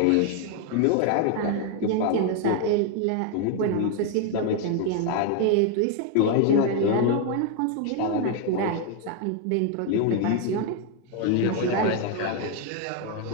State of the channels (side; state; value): both; different; correlation 0.01